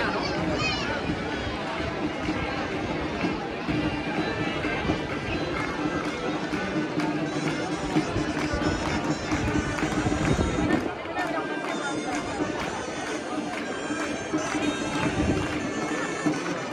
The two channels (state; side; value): identical; both; correlation 1.00